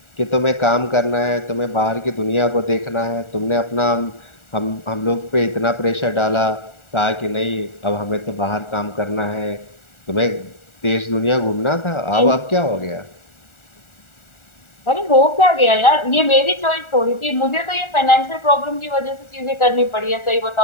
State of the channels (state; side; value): late; right; 1.4 ms